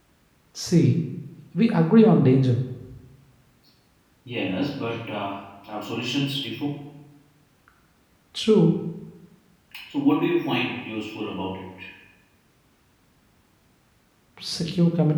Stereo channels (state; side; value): identical; both; correlation 1.00